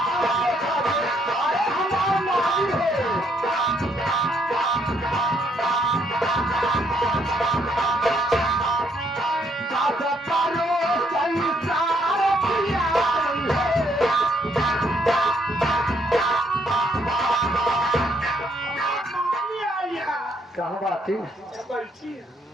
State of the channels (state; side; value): normal; both; correlation 0.71